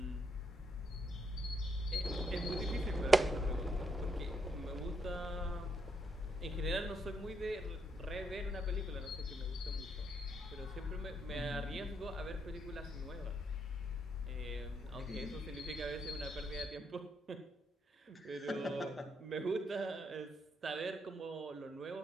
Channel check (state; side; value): normal; both; correlation 0.77